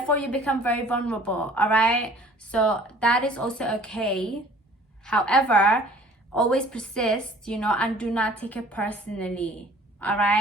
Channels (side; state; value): both; normal; correlation 0.51